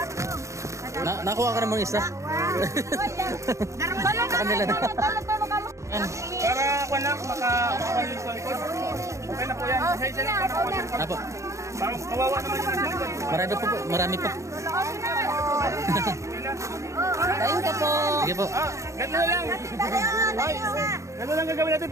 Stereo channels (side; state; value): left; late; 0.14 ms